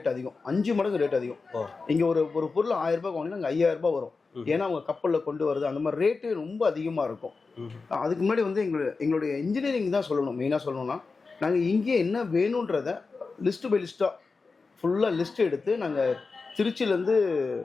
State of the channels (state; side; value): quieter; right; 4.3 dB